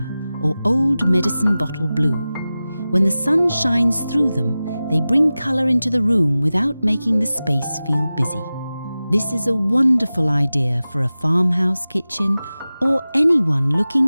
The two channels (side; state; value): both; inverted; correlation -0.96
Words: or old medicine bottle blue. When the sun shines through them, they bring colour into the room without making the space feel busy. This is a wonderful idea for a farmhouse kitchen or anyone